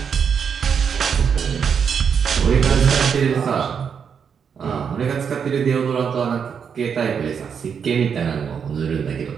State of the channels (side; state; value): left; quieter; 6.9 dB